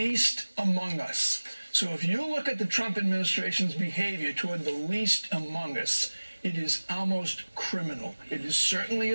among us. So if you look at the Trump administration's behavior toward the least among us, it is almost criminal. It is certainly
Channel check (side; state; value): both; inverted; correlation -1.00